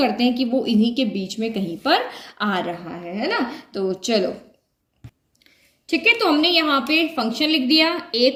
हैं कि वो इन्हीं के बीच में कहीं पर आ रहा है ना। तो चलो ठीक है, तो हमने यहाँ पे फंक्शन लिख दिया, a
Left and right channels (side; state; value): both; identical; correlation 1.00